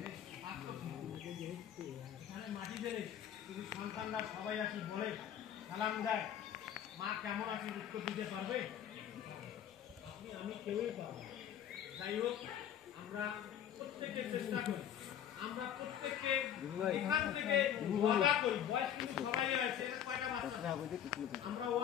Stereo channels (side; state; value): right; quieter; 9.8 dB